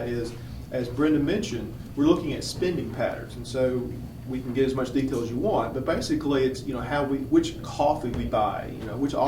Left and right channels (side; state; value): both; identical; correlation 1.00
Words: is, as Brinda mentioned, we're looking at spending patterns, and so we can get as much detail as you want, but basically it's, which coffee we buy, which